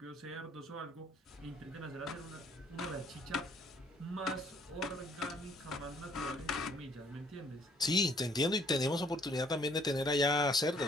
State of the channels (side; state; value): both; normal; correlation 0.62